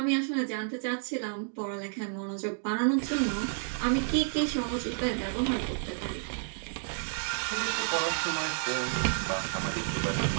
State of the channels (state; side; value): silent; left; digital silence